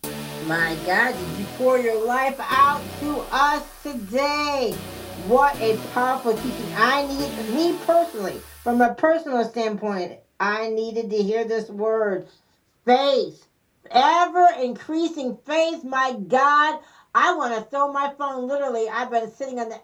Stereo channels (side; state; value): both; identical; correlation 1.00